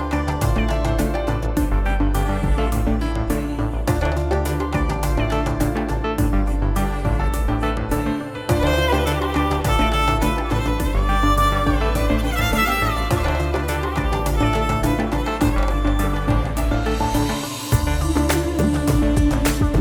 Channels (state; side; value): identical; both; correlation 1.00